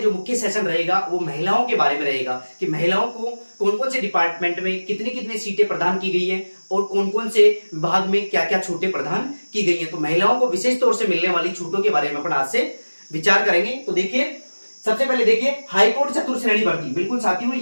मुख्य सेशन रहेगा वो महिलाओं के बारे में रहेगा कि महिलाओं को कौन कौन से डिपार्टमेंट में कितनी कितनी सीटें प्रदान की गई हैं और कौन कौन से विभाग में क्या क्या छूटें प्रदान की गई हैं। तो महिलाओं को विशेष तौर से मिलने वाली छूटों के बारे में अपन आज से विचार करेंगे। तो देखिए, सबसे पहले देखिए हाईकोर्ट चतुर्थ श्रेणी भर्ती। बिल्कुल साथियों,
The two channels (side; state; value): both; inverted; correlation -1.00